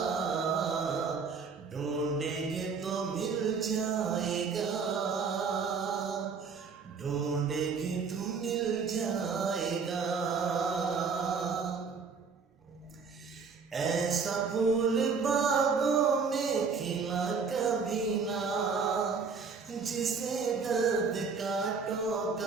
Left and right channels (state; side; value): quieter; left; 5.3 dB